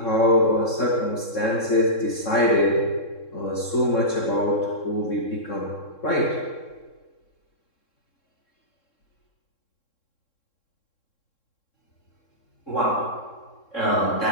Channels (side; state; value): right; late; 3.7 ms